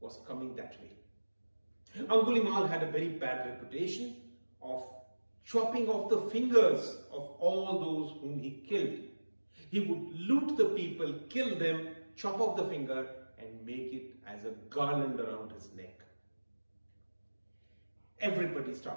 coming that way. Angulimal had a very bad reputation of chopping off the fingers of all those whom he killed. He would loot the people, kill them, chop off the finger and make it as a garland around his neck. Everybody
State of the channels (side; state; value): both; inverted; correlation -1.00